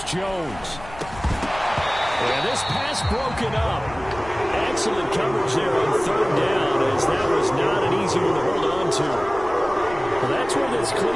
Jones. And this pass broken up. Excellent coverage there on 3rd down, as that was not an easy one to hold on to. Well, that's where this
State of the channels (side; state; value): left; noise; rumble, 17 dB below the sound